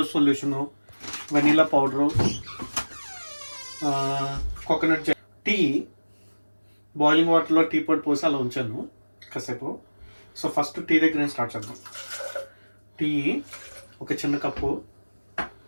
solution, vanilla powder, coconut tea. Boiling వాటర్లో టీ పొడి పోసి అలా ఉంచాను కాసేపు. సో ఫస్ట్ టీ దగ్గర నేను స్టార్ట్ చేద్దాం. టీ ఒక చిన్న కప్పు,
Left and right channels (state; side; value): inverted; both; correlation -1.00